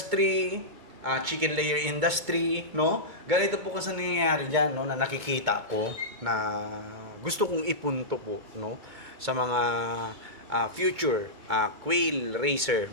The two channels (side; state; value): left; late; 2.3 ms